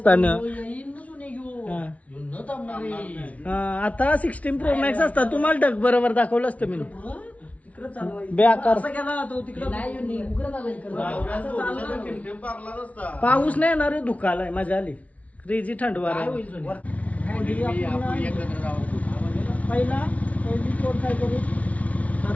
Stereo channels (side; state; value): right; late; 0.067 ms